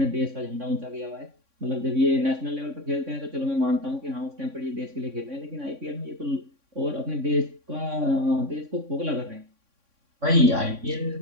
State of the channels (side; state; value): left; late; 3.6 ms